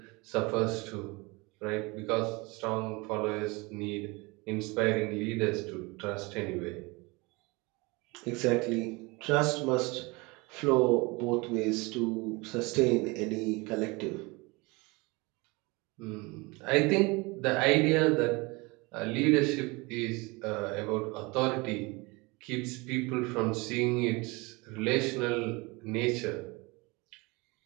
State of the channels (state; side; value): quieter; left; 25.7 dB